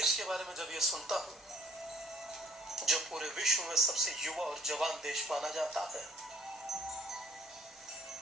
के बारे में जब ये सुनता हूं जो पूरे विश्व में सबसे युवा और जवान देश माना जाता है,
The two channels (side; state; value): both; normal; correlation 0.58